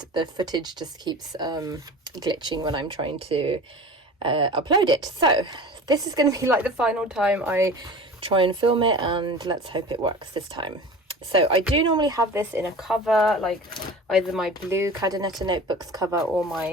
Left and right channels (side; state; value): both; normal; correlation 0.37